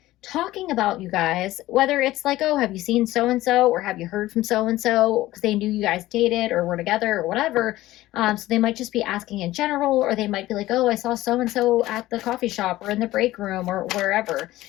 talking about you guys, whether it's like, oh, have you seen so and so, or have you heard from so and so, because they knew you guys dated or were together or whatever. So they might just be asking in general, or they might be like, oh, I saw so and so at the coffee shop or in the break room or wherever.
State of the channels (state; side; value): quieter; right; 16.5 dB